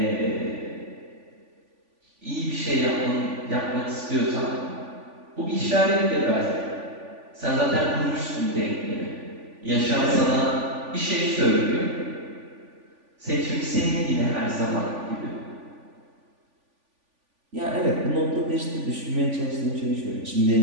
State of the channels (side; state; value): left; late; 3.5 ms